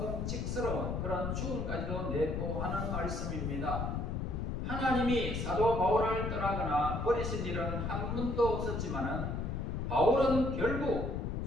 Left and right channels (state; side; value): noise; left; rumble, 2 dB below the sound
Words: 그런 죽음까지도 내포하는 말씀입니다. 하나님이 사도 바울을 떠나거나 버리신 일은 한 번도 없었지만은 바울은 결국